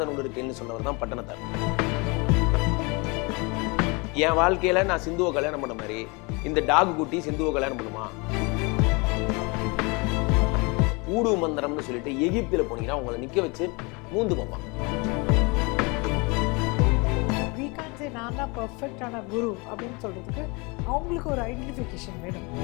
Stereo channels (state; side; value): quieter; right; 28.5 dB